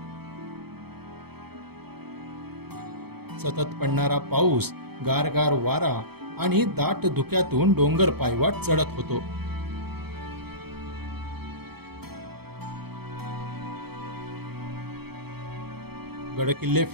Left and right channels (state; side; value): late; left; 0.97 ms